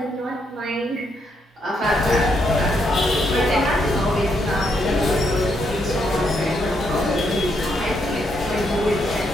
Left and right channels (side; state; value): both; normal; correlation 0.77